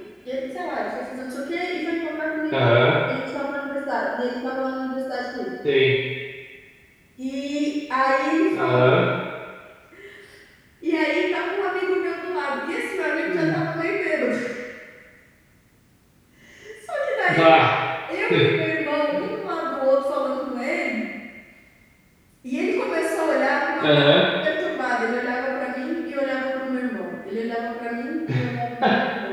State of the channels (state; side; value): identical; both; correlation 1.00